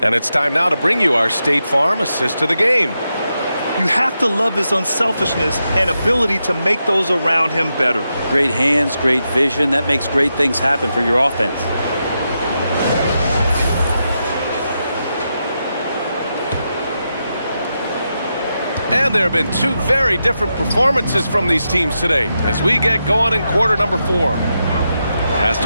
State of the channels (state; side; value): inverted; both; correlation -0.86